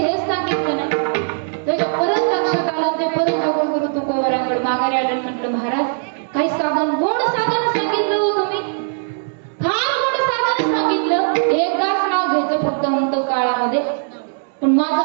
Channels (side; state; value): left; silent; digital silence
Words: सांगितलं नाही. त्याच्या परत लक्षात आलं. ते परत जगद्गुरु तुकोबारांकडे माघारी आलं. म्हटलं महाराज काही साधन, गोड साधन सांगितलं हो तुम्ही, फार गोड साधन सांगितलं. एकदाच नाव घ्यायचं फक्त अंतकाळामध्ये, पण माझं